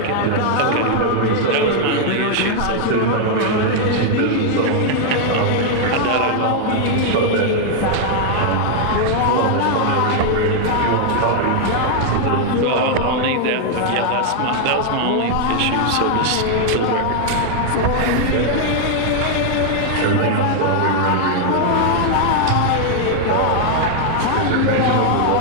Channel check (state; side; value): different; both; correlation 0.00